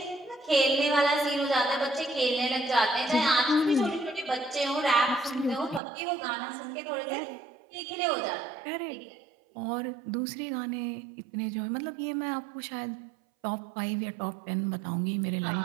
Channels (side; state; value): left; drops out; at 5.8 s